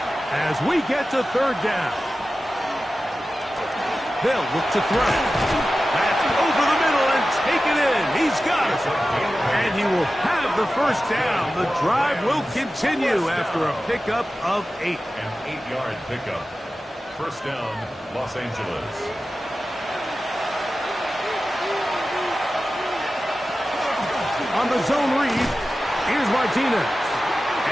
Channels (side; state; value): both; normal; correlation 0.94